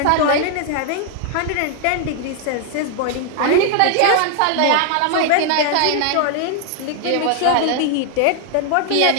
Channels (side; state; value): both; different; correlation 0.00